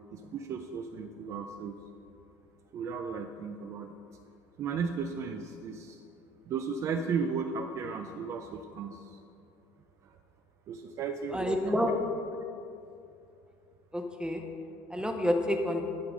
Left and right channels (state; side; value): normal; both; correlation 0.65